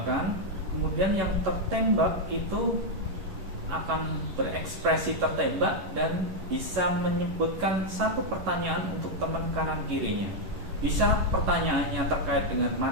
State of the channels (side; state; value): left; late; 11 ms